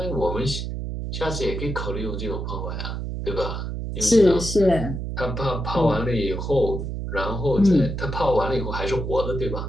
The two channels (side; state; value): right; noise; hum, 4 dB below the sound